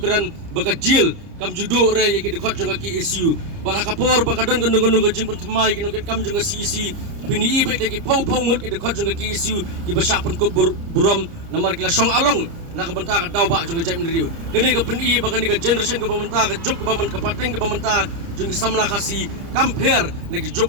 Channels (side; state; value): left; late; 30 ms